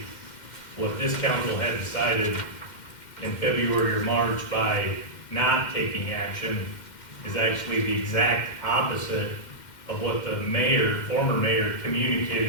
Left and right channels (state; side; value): late; right; 2.1 ms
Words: what this council had decided in February or March by not taking action is actually the exact opposite of what the mayor, former mayor,